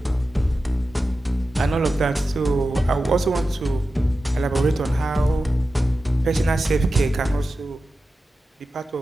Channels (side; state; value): both; normal; correlation 0.93